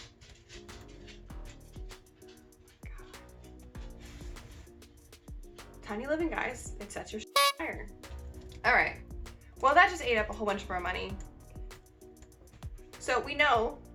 God. Tiny living, guys. It sets your fire. All right. Well, that just ate up a whole bunch of our money. So we know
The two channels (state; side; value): identical; both; correlation 1.00